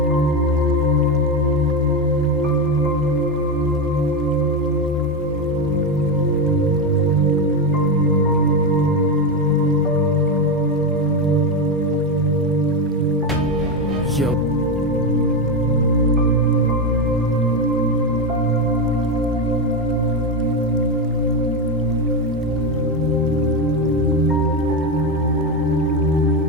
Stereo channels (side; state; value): both; normal; correlation 0.11